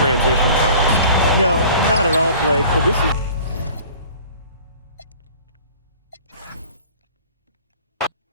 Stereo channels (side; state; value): both; inverted; correlation -0.47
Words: fellas. No, not at all, Blake, but this is...